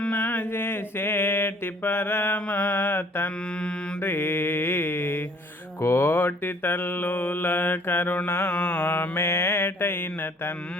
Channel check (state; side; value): normal; both; correlation 0.57